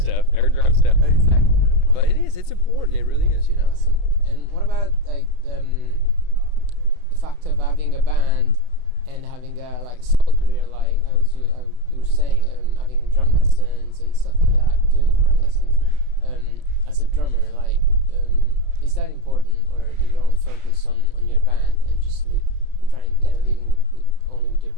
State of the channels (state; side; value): late; left; 32 ms